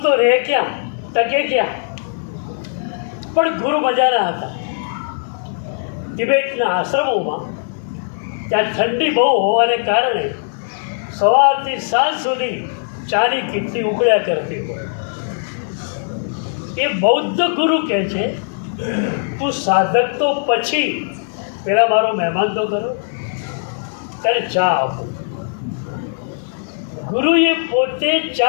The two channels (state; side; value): silent; right; digital silence